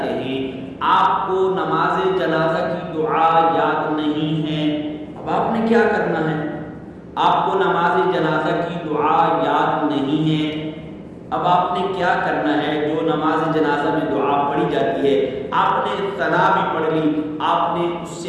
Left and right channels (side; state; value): both; identical; correlation 1.00